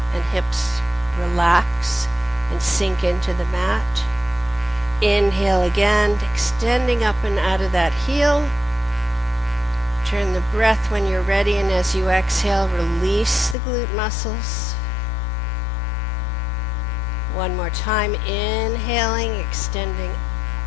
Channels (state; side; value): drops out; right; at 13.6 s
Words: and hips relax and sink into the mat. Inhale again, extending up and out of that heel. Turn the breath when you're ready, and as you exhale, release the glute muscles. One more time, inhaling, extending